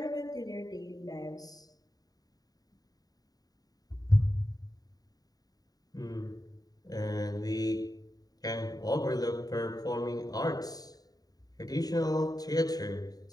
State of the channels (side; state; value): right; late; 0.18 ms